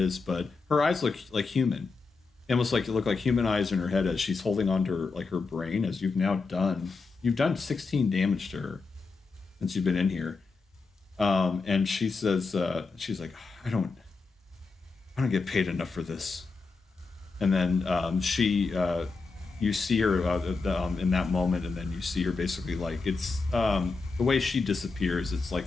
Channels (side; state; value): right; quieter; 4.2 dB